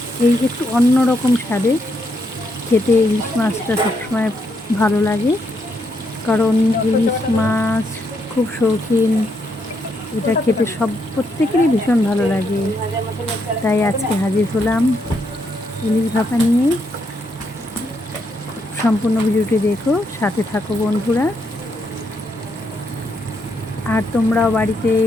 এই একটু অন্যরকম স্বাদে খেতে ইলিশ মাছটা সবসময় ভালো লাগে, কারণ ইলিশ মাছ খুব শৌখিন, এটা খেতে প্রত্যেকেরই ভীষণ ভালো লাগে। তাই আজকে হাজির হলাম ইলিশ ভাপা নিয়ে। সম্পূর্ণ ভিডিওটি দেখো, সাথে থাকো বন্ধুরা। আর তোমরাও বাড়িতে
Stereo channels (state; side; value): normal; both; correlation 0.77